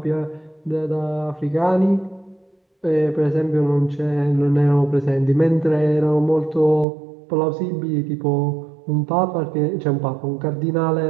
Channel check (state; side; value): drops out; left; at 6.9 s